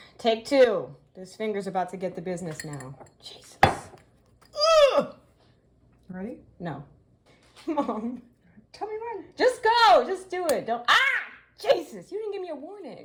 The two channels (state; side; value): identical; both; correlation 1.00